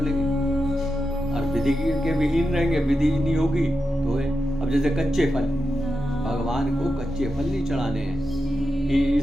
लेंगे। और विधि के विहीन रहेंगे, विधि नहीं होगी तो है। अब जैसे कच्चे फल, भगवान को कच्चे फल नहीं चढ़ाने हैं कि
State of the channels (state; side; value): normal; both; correlation 0.88